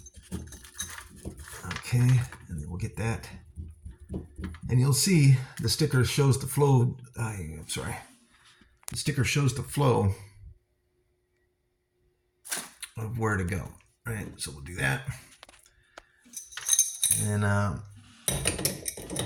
okay, and then we'll get that. And you'll see the sticker shows the flow. The sticker shows the flow of where to go. Right, so we'll do that. And of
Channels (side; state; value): both; identical; correlation 1.00